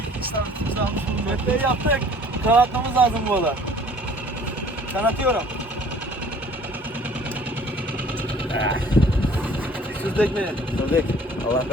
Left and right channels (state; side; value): normal; both; correlation 0.53